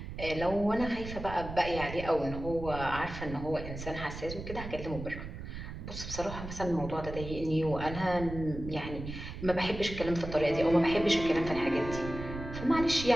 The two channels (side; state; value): right; noise; rumble, 9 dB below the sound